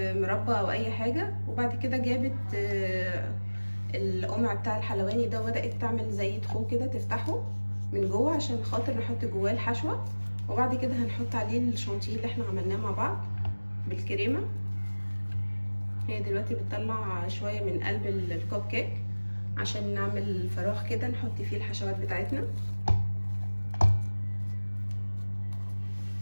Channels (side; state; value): both; inverted; correlation -1.00